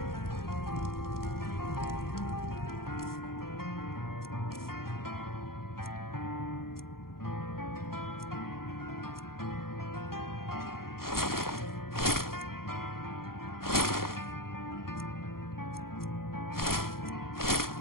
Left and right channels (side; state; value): right; late; 0.92 ms